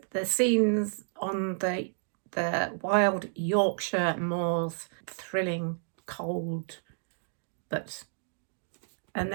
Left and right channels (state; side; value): silent; left; digital silence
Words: scenes on the wild Yorkshire moors, thrilling, cold, and